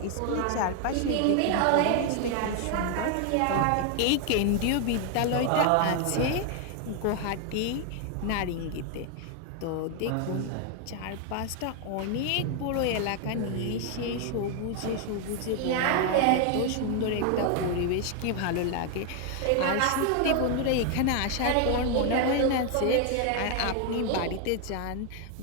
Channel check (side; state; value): both; different; correlation 0.00